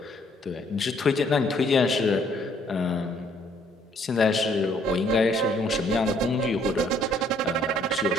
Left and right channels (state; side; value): normal; both; correlation 0.64